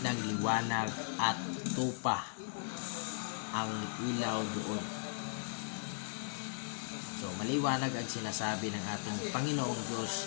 ng liwanag at tupa ang ilaw doon. So maliwanag ang sinasabi ng ating Panginoong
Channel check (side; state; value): right; silent; 53 dB below the other